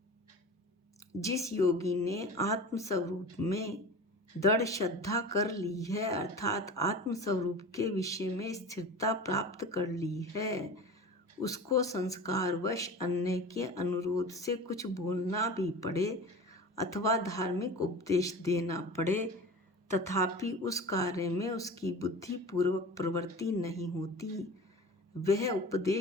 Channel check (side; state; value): both; normal; correlation 0.35